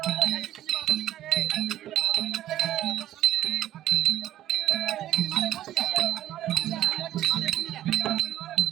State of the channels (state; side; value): quieter; left; 13.0 dB